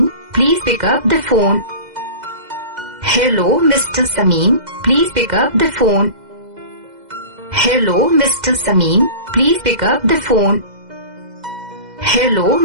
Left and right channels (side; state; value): left; late; 2.0 ms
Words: Please pick up the phone. Hello, Mr. Samin. Please pick up the phone. Hello, Mr. Samin. Please pick up the phone. Hello,